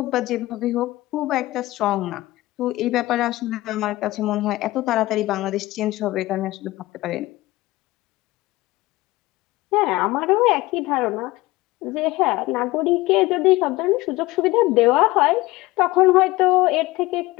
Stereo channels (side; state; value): right; quieter; 18.9 dB